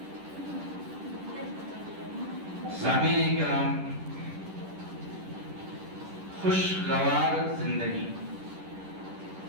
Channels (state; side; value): late; left; 10 ms